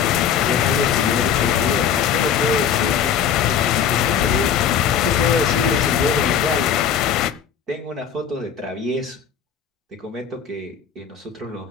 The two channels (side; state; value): right; quieter; 7.9 dB